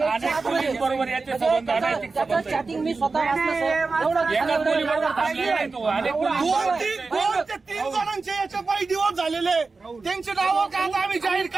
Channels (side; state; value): left; quieter; 4.1 dB